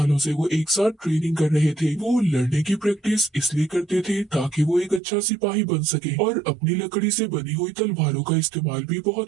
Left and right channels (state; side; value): drops out; left; at 5.0 s